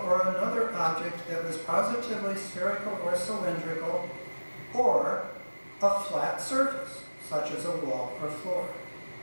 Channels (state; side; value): inverted; both; correlation -1.00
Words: or another object that was positively spherical or cylindrical, or a flat surface, such as a wall or floor.